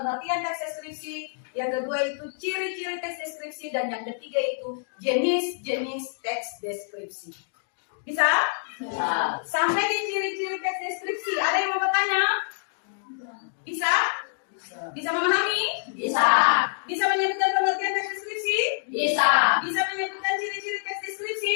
teks deskripsi, yang kedua itu ciri-ciri teks deskripsi, dan yang ketiga itu jenis-jenis teks deskripsi. Bisa? Bisa. Sampai di ciri-ciri teks deskripsi, ada yang mau bertanya? Bisa? Bisa memahami? Bisa. Bisa menyebutkan pengertian teks deskripsi? Bisa. Bisa menyebutkan ciri-ciri teks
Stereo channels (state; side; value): silent; right; digital silence